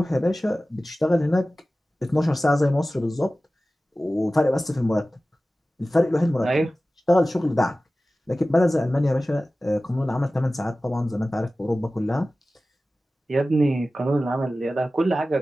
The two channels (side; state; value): both; normal; correlation 0.96